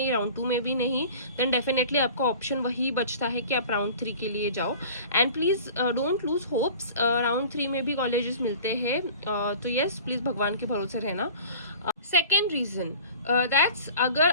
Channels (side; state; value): both; inverted; correlation -0.42